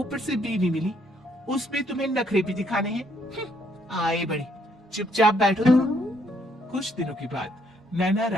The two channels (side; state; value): both; normal; correlation 0.69